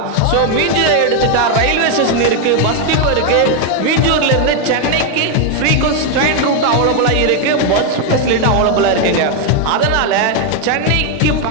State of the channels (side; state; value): both; different; correlation 0.01